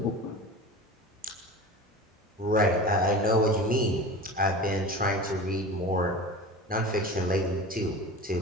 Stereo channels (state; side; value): normal; both; correlation 0.33